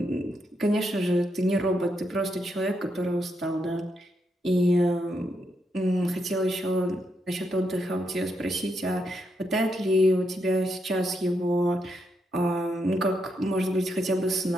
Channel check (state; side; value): normal; both; correlation 0.81